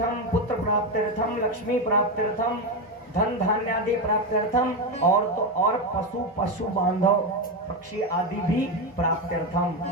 पुत्र प्राप्त्यर्थम, लक्ष्मी प्राप्त्यर्थम, धन धान्य आदि प्राप्त्यर्थम, और पशु बांधव पक्षी आदि भी प्राप्त्यर्थम।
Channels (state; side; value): normal; both; correlation 0.12